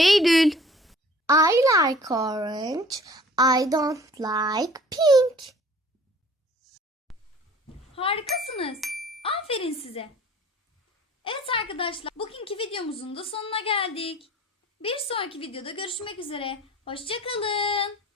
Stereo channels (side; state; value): both; normal; correlation 0.49